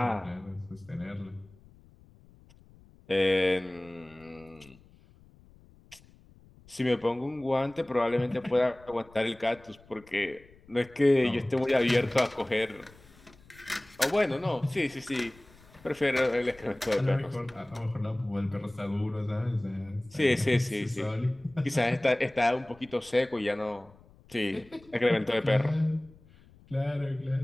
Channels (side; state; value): left; noise; rumble, 26 dB below the sound